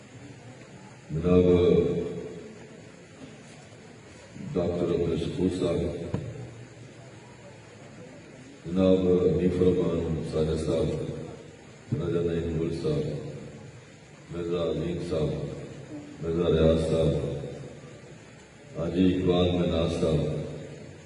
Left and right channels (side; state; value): both; identical; correlation 1.00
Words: جناب ڈاکٹر عبدالشکور صاحب، جناب حنیف الرحمان ساجد صاحب، راجہ نعیم گل صاحب، مرزا عظیم صاحب، مرزا ریاض صاحب، حاجی اقبال مناز صاحب،